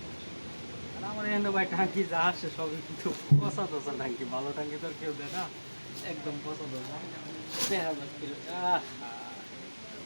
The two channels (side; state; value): both; inverted; correlation -1.00